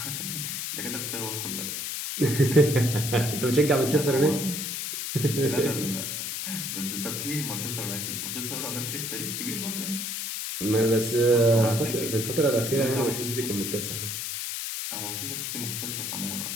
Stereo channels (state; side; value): noise; left; hiss, 4 dB below the sound